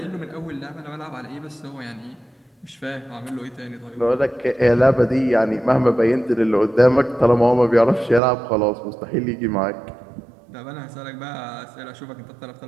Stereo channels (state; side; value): drops out; left; at 8.2 s